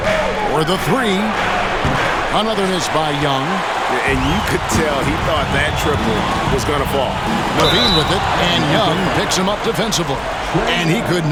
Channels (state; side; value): identical; both; correlation 1.00